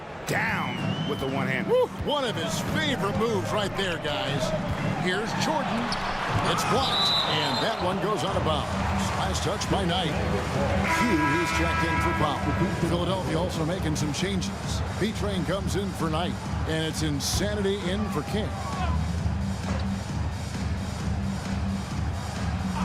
down with the one hand. One of his favorite moves right there, guys. Here's Jordan. It's blocked, and that one goes out of bounds. Last touch by Knight. He's checked in for Powell. Philadelphia also making some changes. B-Train comes in for Knight, and it's Insanity in for King.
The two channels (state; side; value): identical; both; correlation 1.00